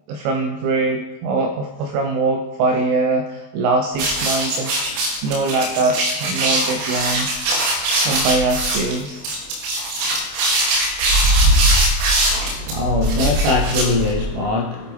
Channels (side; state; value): left; late; 27 ms